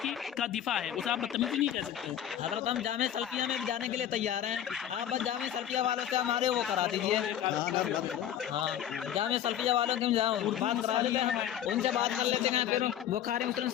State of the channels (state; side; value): quieter; right; 10.6 dB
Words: کی کا دفاع ہے, اسے آپ بدتمیزی نہیں کہہ سکتے. حضرت ہم جامع سلفیہ میں جانے کے لیے تیار ہیں, آپ بس جامع سلفیہ والوں سے ہمارے وہ کرا دیجیے. ہاں جامع سلفیہ والوں کے بات کرا دیتے ہیں, ان سے بات کر لیتے ہیں. پھر بخاری مسلم